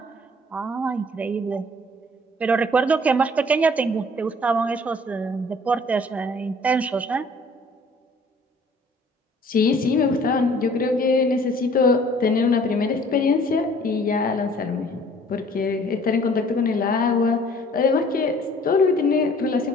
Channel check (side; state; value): both; normal; correlation 0.54